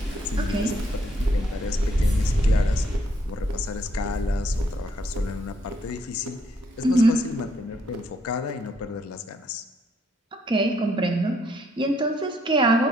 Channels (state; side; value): normal; both; correlation 0.71